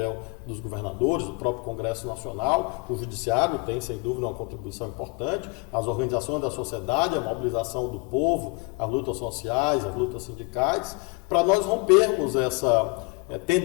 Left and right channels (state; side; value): quieter; right; 29.6 dB